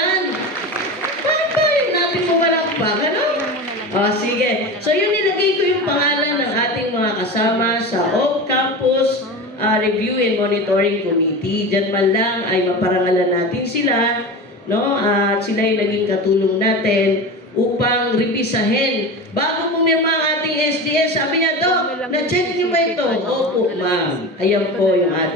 Bakit ba yung natin pumalakpak? Ano? Sige. So yun, nilagay ko yung pangalan ng ating mga kasama sa Off-Campus Review and Monitoring Committee. Diyan man lang ay maparangalan natin sila, no? At sila yung naging katulong natin upang revisahin. Bago pumirma ang ating SDS, sabi niya, Dok, na-check niyo ba ito? Opo, ma'am. Ayan po yung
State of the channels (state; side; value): normal; both; correlation 0.28